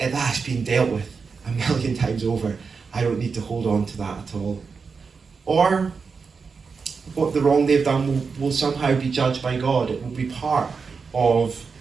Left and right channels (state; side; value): quieter; left; 5.2 dB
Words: that's been dealt with a million times over. I don't need to hold on to that at all. Or what the wrong they've done will somehow be judged by God. It will be part of